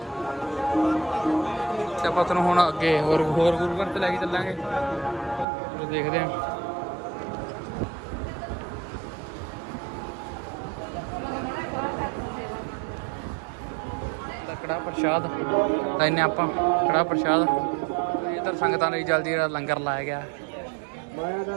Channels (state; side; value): drops out; left; at 5.5 s